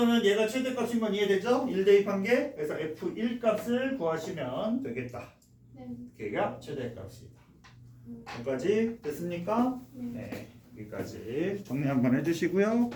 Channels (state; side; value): identical; both; correlation 1.00